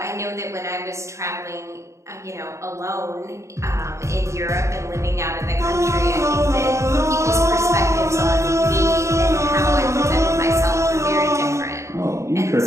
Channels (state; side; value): late; left; 0.14 ms